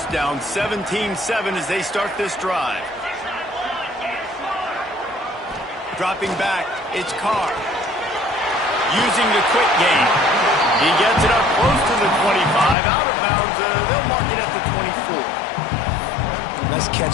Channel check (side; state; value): right; drops out; at 12.8 s